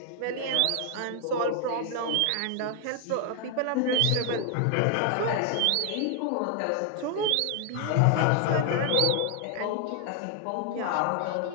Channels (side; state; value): both; different; correlation 0.00